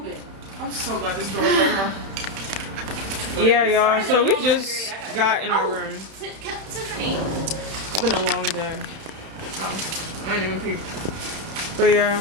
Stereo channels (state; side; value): late; left; 31 ms